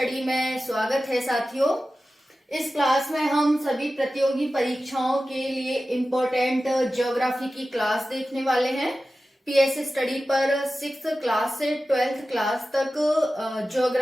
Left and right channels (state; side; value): normal; both; correlation 0.95